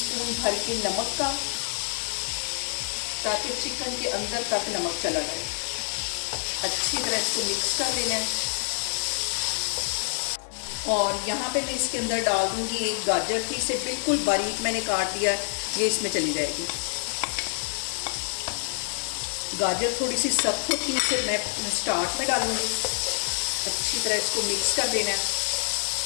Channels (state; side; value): silent; right; digital silence